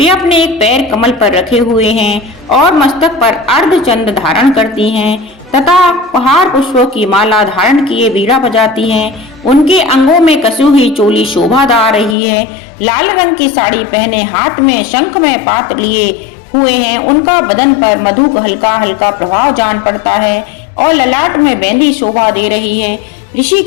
अपने एक पैर कमल पर रखे हुए हैं और मस्तक पर अर्धचंद्र धारण करती हैं तथा पहाड़ पुष्पों की माला धारण किए बीड़ा बजाती हैं। उनके अंगों में कसी हुई चोली शोभा दा रही है। लाल रंग की साड़ी पहने हाथ में शंख में पात लिए हुए हैं। उनका बदन पर मधु का हल्का हल्का प्रभाव जान पड़ता है और ललाट में मेहंदी शोभा दे रही है। ऋषि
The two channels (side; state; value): right; drops out; at 12.2 s